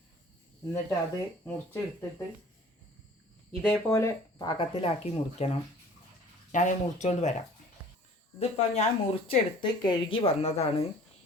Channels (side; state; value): both; normal; correlation 0.49